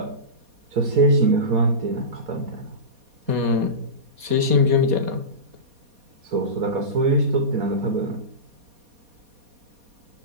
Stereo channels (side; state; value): left; late; 4.2 ms